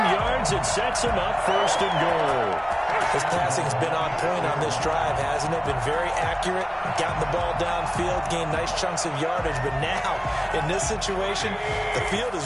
It sets them up 1st and goal. His passing's been on point on this drive, hasn't it? Been very accurate, gotten the ball downfield, gained nice chunks of yardage. But now, in this situation, the field is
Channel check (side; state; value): both; identical; correlation 1.00